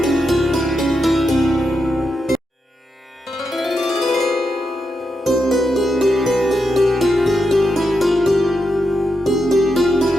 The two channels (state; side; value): normal; both; correlation 0.84